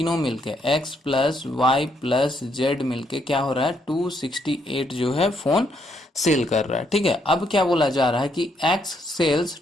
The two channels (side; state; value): both; normal; correlation 0.74